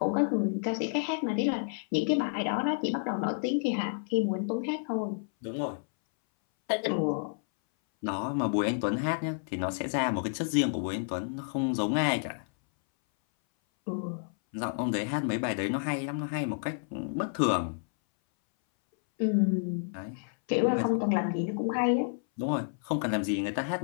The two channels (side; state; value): right; silent; 58 dB below the other